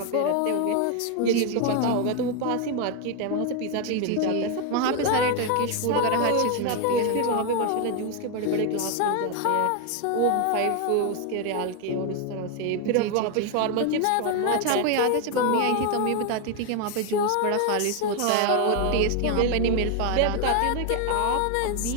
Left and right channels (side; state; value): both; different; correlation 0.01